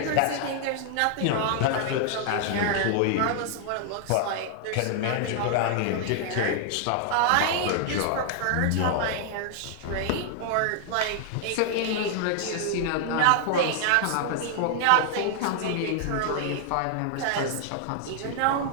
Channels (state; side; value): different; both; correlation 0.00